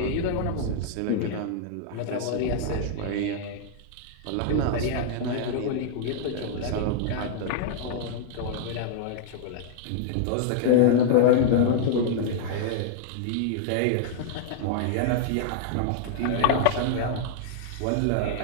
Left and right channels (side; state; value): both; different; correlation -0.01